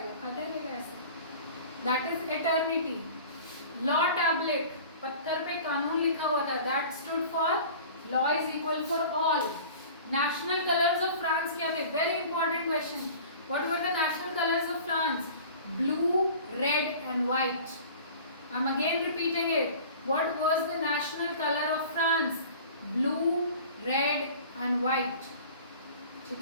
खाता रहेगा ऐसा, that is eternity. Law tablet, पत्थर पे कानून लिखा हुआ था, that stood for law is equal for all. National colours of France क्या थे? Very important question. What were the national colours of France? Blue, red and white. I am again repeating it, what was the national colour of France? Blue, red and white,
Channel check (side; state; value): both; inverted; correlation -0.43